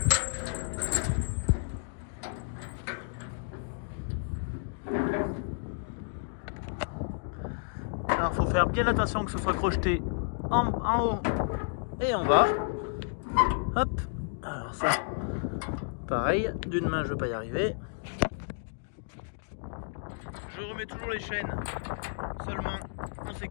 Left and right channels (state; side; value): silent; right; digital silence